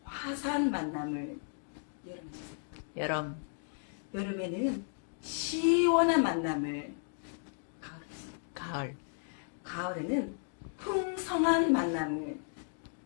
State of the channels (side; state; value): right; silent; digital silence